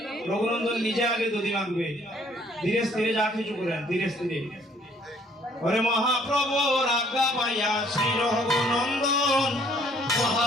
রঘুনন্দন নিজে আগে দধি মাখবে। ধীরে স্থিরে যা কিছু করেন ধীরে স্থিরে। ওরে মহাপ্রভুর আজ্ঞা পাইয়া শ্রী রঘুনন্দন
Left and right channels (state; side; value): normal; both; correlation 0.62